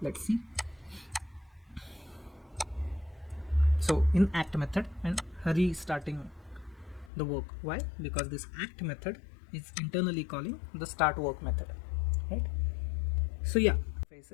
Let's see. So in act method and restarting the work. Why? Because this act method is internally calling the start work method, right? So yeah,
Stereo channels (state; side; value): drops out; right; at 7.1 s